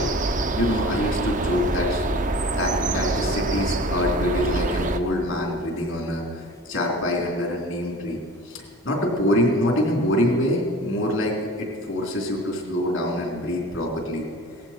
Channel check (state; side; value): normal; both; correlation 0.42